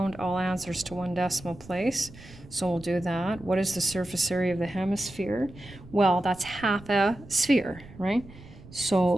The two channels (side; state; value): right; noise; rumble, 19 dB below the sound